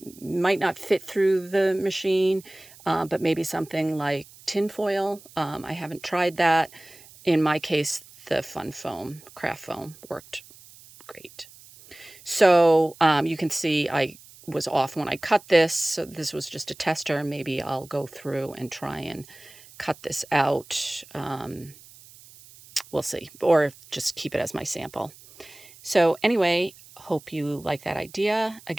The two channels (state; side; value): noise; right; hiss, 22 dB below the sound